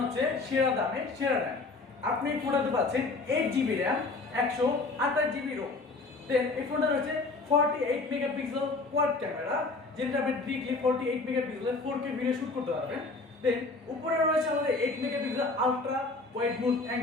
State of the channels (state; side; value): quieter; right; 3.6 dB